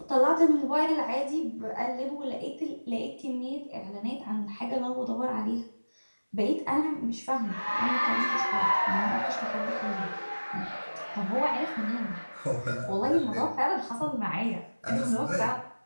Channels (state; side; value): inverted; both; correlation -1.00